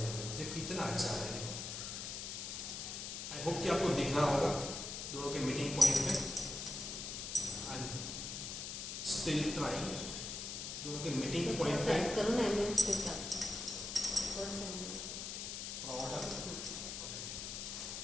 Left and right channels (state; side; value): noise; left; hiss, 5 dB below the sound